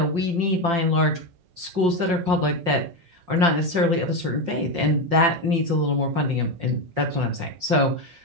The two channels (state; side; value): late; left; 5.5 ms